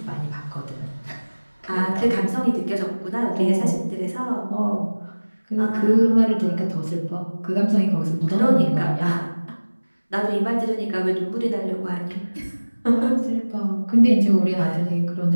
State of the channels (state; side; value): inverted; both; correlation -1.00